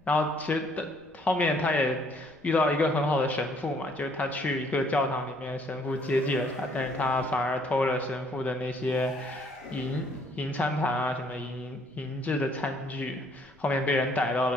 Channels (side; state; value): left; noise; rumble, 30 dB below the sound